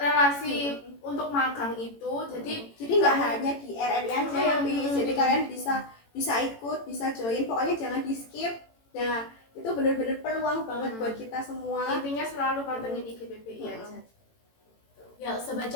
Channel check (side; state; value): right; late; 18 ms